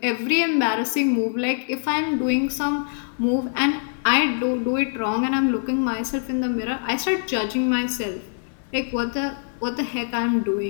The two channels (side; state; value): right; silent; digital silence